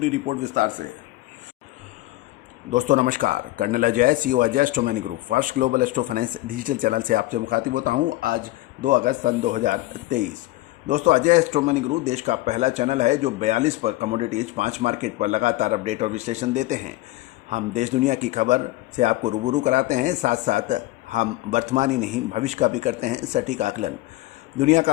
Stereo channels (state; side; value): quieter; right; 17.8 dB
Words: रिपोर्ट विस्तार से। दोस्तों नमस्कार। Colonel Ajay, CEO Ajay astro money group first global astro finance digital channel से आपसे मुखातिब होता हूं। आज 2 अगस्त सन 2023। दोस्तों, अजय एस्ट्रो मनी ग्रुप देश का पहला चैनल है जो 42 पर कमोडिटीज 5 मार्केट पर लगातार अपडेट और विश्लेषण देते हैं। हम देश दुनिया की खबर से आपको रूबरू कराते हैं, साथ साथ हम वर्तमान ही नहीं भविष्य का भी करते हैं सटीक आकलन। दुनिया